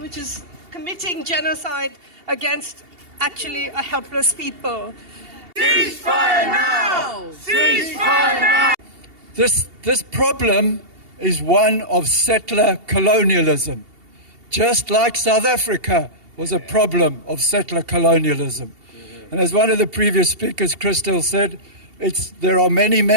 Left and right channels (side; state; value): left; late; 2.8 ms